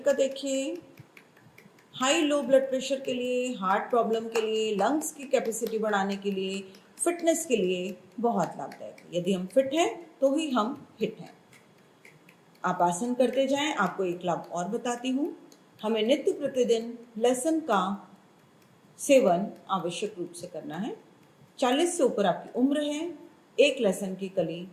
देखिए। हाई लो ब्लड प्रेशर के लिए, हार्ट प्रॉब्लम के लिए, लंग्स की कैपेसिटी बढ़ाने के लिए, फिटनेस के लिए बहुत लाभदायक है। यदि हम फिट हैं तो ही हम हिट हैं। आप आसन करते जाएं। आपको एक लाभ और बताती हूँ। हमें नित्य प्रतिदिन लहसुन का सेवन आवश्यक रूप से करना है। 40 से ऊपर आपकी उम्र है, एक लहसुन की कली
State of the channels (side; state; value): both; identical; correlation 1.00